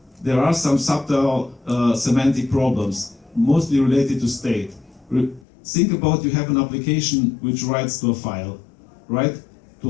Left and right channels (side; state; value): right; drops out; at 5.5 s